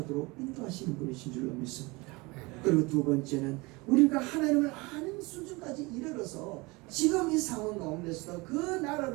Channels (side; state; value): left; quieter; 24.7 dB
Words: 인도하시는 분이신 줄로 믿습니다. 그리고 두 번째는 우리가 하나님을 아는 수준까지 이르러서 지금 이 상황 가운데서 그